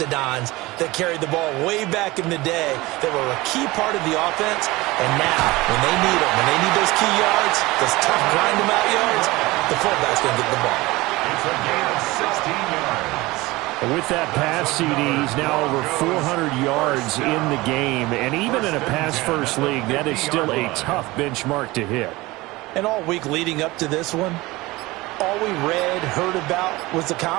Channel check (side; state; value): left; quieter; 20.8 dB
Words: that carried the ball way back in the day that were a key part of the offense. And now, when they need them, when they need those key yards, those tough grind-them-out yards, the fullback's going to get the ball. It's a gain of 16 yards. With that pass, CD, he's now over 400 yards in the game. And even in a pass-first league, that is still a tough benchmark to hit. And all week leading up to this one, all we read, heard about was the